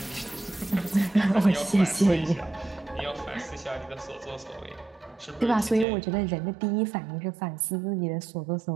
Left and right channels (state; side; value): drops out; left; at 5.9 s